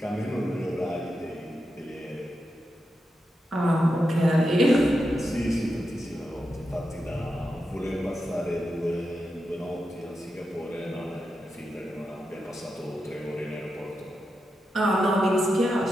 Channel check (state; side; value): normal; both; correlation 0.88